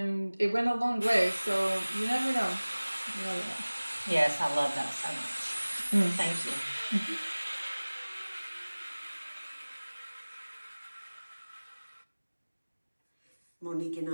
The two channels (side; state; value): both; inverted; correlation -1.00